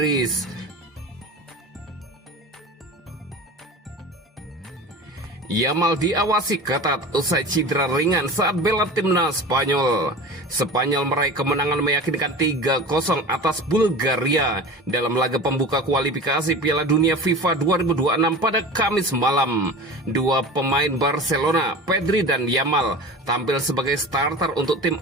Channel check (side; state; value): both; normal; correlation 0.34